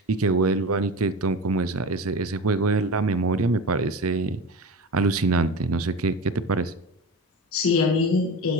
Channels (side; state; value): both; normal; correlation 0.28